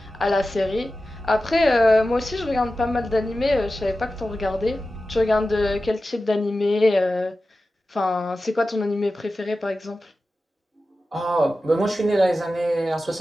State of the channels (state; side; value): normal; both; correlation 0.94